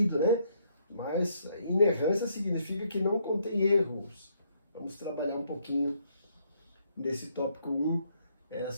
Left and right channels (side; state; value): both; inverted; correlation -0.72